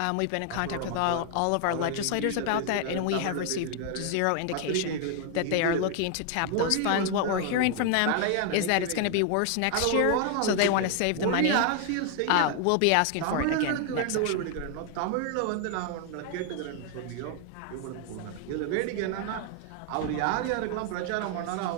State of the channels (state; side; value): different; both; correlation 0.00